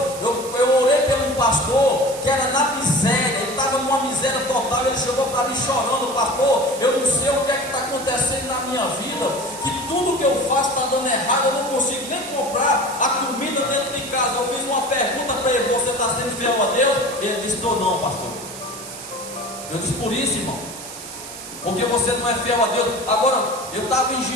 Eu orei por um pastor que era na miséria, ele estava numa miséria total. Ele chegou para mim chorando: pastor, eu não sei o que é que está acontecendo na minha vida, que tudo que eu faço está dando errado, eu não consigo nem comprar a comida dentro de casa. Eu fiz uma pergunta para ele: você está sendo fiel a Deus? Ele disse: estou não, pastor. Eu disse: por isso, irmão, porque você não é fiel a Deus. Agora, eu estava em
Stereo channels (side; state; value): right; noise; hiss, 12 dB below the sound